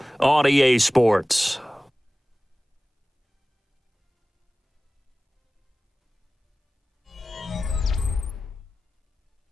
on EA Sports.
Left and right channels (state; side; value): normal; both; correlation 0.97